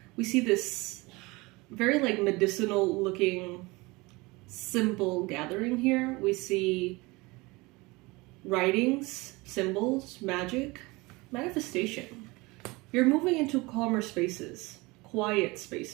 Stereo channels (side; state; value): left; quieter; 23.7 dB